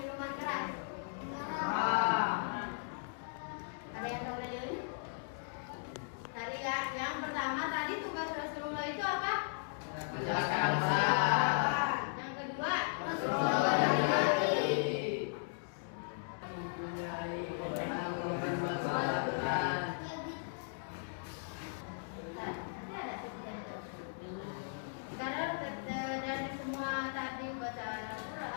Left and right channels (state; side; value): silent; right; digital silence